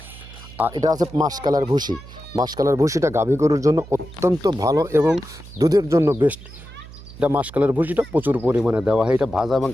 আর এটা আছে মাসকালার ভুসি। মাসকালার ভুসিটা গাভী গরুর জন্য অত্যন্ত ভালো এবং দুধের জন্য বেস্ট। এটা মাসকালার ভুসিটা প্রচুর পরিমাণে দেওয়া হয়। এটা ভাজা এবং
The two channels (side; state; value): right; noise; hum, 17 dB below the sound